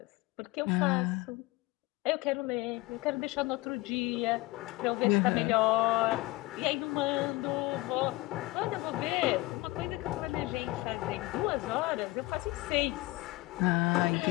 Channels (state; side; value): quieter; right; 21.1 dB